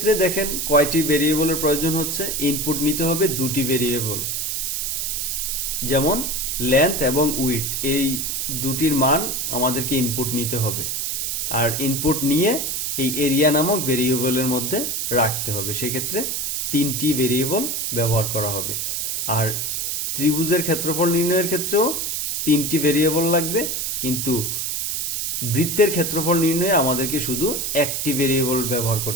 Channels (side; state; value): right; noise; hiss, 1 dB below the sound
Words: দেখেন কয়টি ভেরিয়েবলের প্রয়োজন হচ্ছে, ইনপুট নিতে হবে দুটি ভেরিয়েবল, যেমন লেন্থ এবং উইডথ, এই দুটির মান আমাদেরকে ইনপুট নিতে হবে। আর ইনপুট নিয়ে এই এরিয়া নামক ভেরিয়েবলের মধ্যে রাখতে হবে, সেক্ষেত্রে তিনটি ভেরিয়েবল ব্যবহার করা হবে। আর ত্রিভুজের ক্ষেত্রফল নির্ণয়ের ক্ষেত্রেও তিনটি ভেরিয়েবল লাগবে, কিন্তু বৃত্তের ক্ষেত্রফল নির্ণয়ে আমাদেরকে শুধু একটি ভেরিয়েবল ব্যবহার